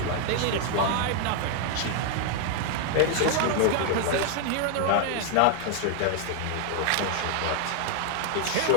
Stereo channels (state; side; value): different; both; correlation 0.00